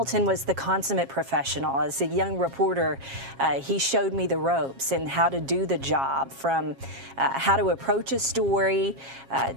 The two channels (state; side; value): late; left; 7.4 ms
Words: was the consummate professional. As a young reporter, he showed me the ropes and how to do the job, from how to approach a story